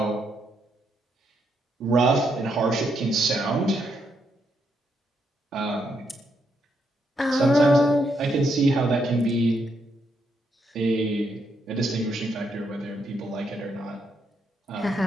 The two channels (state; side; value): normal; both; correlation 0.78